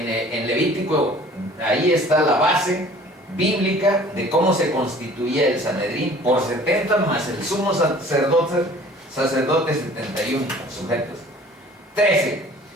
Levítico, ahí está la base bíblica de cómo se constituía el Sanedrín por 70 más el sumo sacerdote 71 sujetos. 13.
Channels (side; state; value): both; normal; correlation 0.50